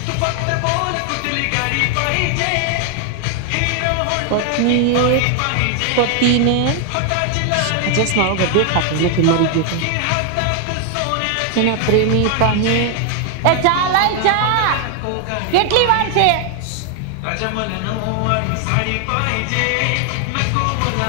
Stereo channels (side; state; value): both; different; correlation 0.00